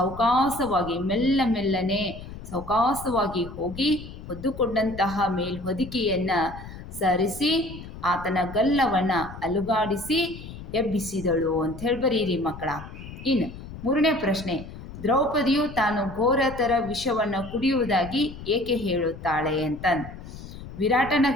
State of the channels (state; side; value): noise; left; rumble, 13 dB below the sound